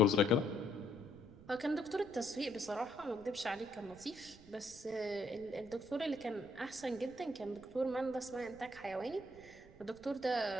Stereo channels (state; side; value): noise; right; rumble, 21 dB below the sound